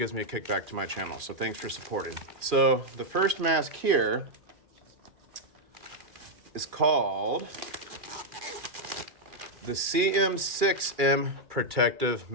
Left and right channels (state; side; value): late; left; 2.4 ms